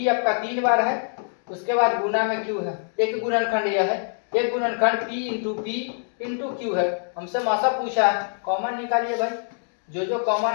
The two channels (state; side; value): silent; right; digital silence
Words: आपका 3 बार है, उसके बाद गुना में क्यू है। एक गुणनखंड यह है, एक गुणनखंड पी इंटू क्यू है। हमसे मौसा पूछा है, कॉमन निकालिए भाई, जो कॉमन